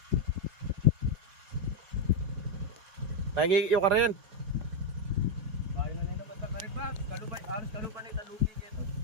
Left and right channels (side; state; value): left; late; 4.6 ms